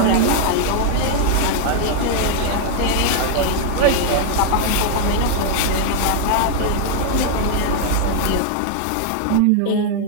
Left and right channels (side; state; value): both; different; correlation 0.00